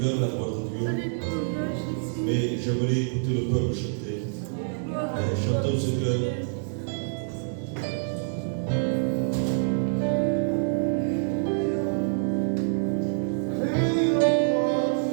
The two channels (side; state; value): left; silent; digital silence